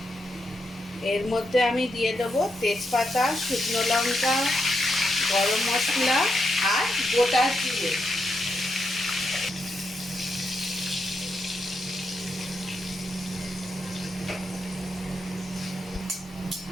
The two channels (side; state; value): both; normal; correlation 0.83